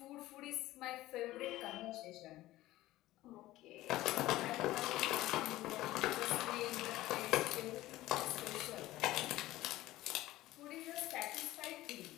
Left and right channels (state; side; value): quieter; right; 16.6 dB